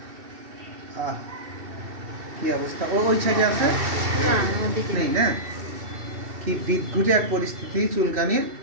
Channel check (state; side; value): late; left; 2.7 ms